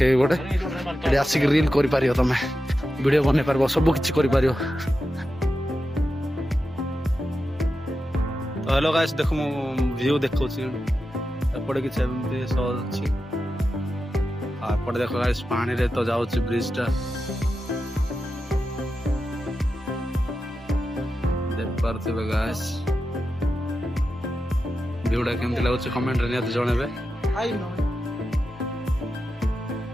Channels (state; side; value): normal; both; correlation 0.90